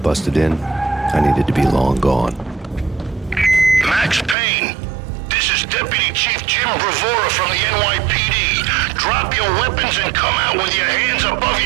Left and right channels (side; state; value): left; drops out; at 4.4 s